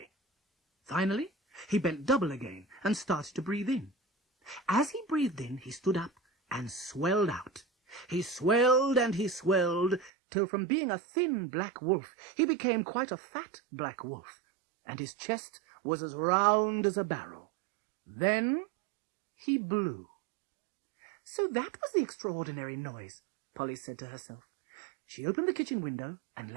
Finally, he bent double again and started to breathe in. As he breathed in, he stood up and swelled out. He swelled and he swelled, till from being a thin black wolf, he became quite a fat black wolf, and his chest was as round as a barrel. Then he blew. So that was the extraordinary noise, Polly said to herself. She opened the kitchen window and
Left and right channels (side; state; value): left; drops out; at 10.1 s